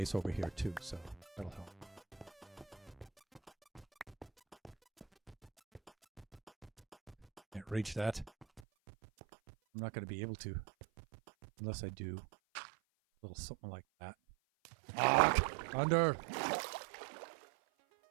over here too, so that'll help. Can't reach that. I'm not going to be able to unless I do a little something like that. Ah, thunder!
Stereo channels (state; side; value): drops out; left; at 8.6 s